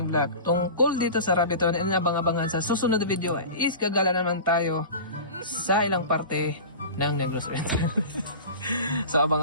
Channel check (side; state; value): both; inverted; correlation -0.34